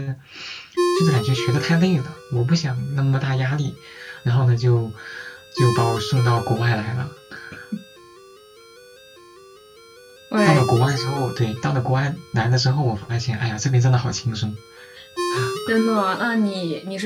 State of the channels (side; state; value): both; identical; correlation 1.00